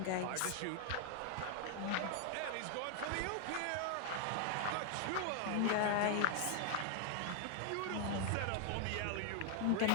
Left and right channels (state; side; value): different; both; correlation 0.00